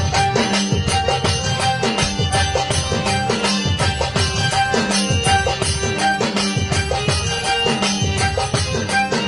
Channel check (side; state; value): both; identical; correlation 1.00